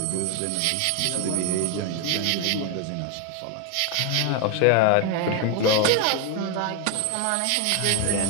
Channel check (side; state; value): both; different; correlation 0.01